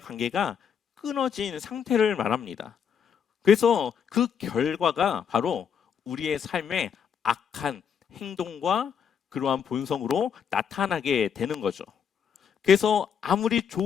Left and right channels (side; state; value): right; quieter; 7.5 dB